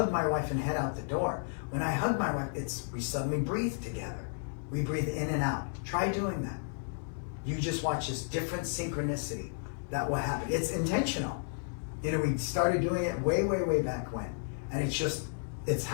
my wife and head out the door. When I hug my wife, we suddenly breathe together. We breathe in and out. Try doing that. You just watch this different synchronicity that will happen. It's intentional. You know, we started doing it way, way, way back when. And it's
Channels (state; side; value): silent; right; digital silence